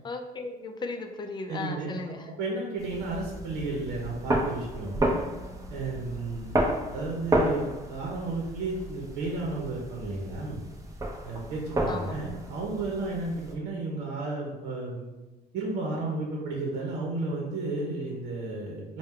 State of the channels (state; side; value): normal; both; correlation 0.51